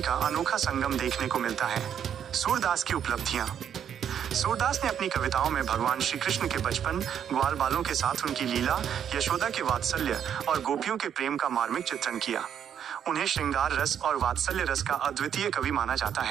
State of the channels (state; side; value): quieter; left; 8.9 dB